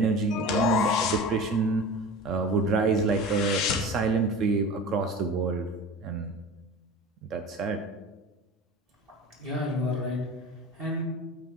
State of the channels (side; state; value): both; normal; correlation 0.34